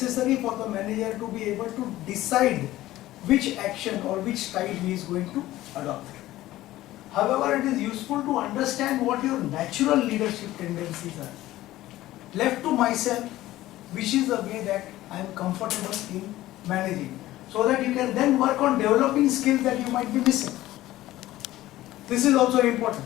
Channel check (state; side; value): quieter; right; 15.7 dB